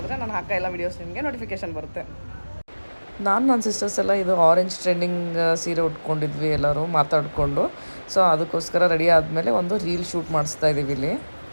ನಾನು ಹಾಕೋ ಎಲ್ಲ ವೀಡಿಯೋಸ್ ನಿಮಗೆ ನೋಟಿಫಿಕೇಶನ್ ಬರುತ್ತೆ. ನಾನು ನನ್ನ ಸಿಸ್ಟರ್ಸ್ ಎಲ್ಲ ಇದು ಆರೆಂಜ್ ಟ್ರೆಂಡಿಂಗ್ ಸೀರೆ ಉಟ್ಕೊಂಡಿದ್ವಿ ಎಲ್ಲರೂ ಮಾತಾಡಿಕೊಂಡು. ಸೊ ಅದಕ್ಕೋಸ್ಕರ ರೆಡಿ ಆದಮೇಲೆ ಒಂದು ರೀಲ್ ಶೂಟ್ ಮಾಡಿಸ್ತಾ ಇದ್ದೀವಿ ಇಲ್ಲಿ.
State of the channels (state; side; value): inverted; both; correlation -1.00